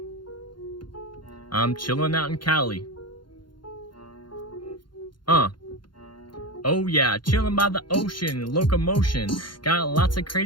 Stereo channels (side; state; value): right; late; 0.72 ms